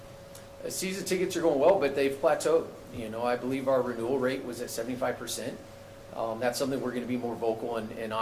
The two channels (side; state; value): both; identical; correlation 1.00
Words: Season tickets are going well, but they've plateaued. You know, I believe our renewal rate was at 75%. That's something we're going to be more vocal and